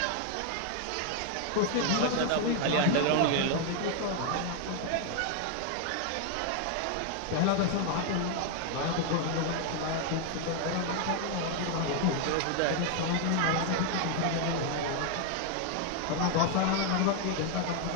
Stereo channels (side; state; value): both; different; correlation 0.00